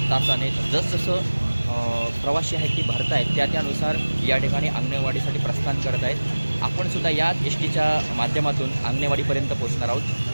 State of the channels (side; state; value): both; inverted; correlation -1.00